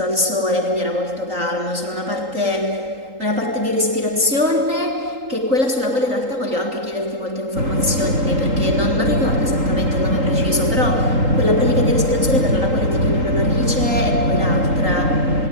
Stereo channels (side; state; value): left; late; 3.8 ms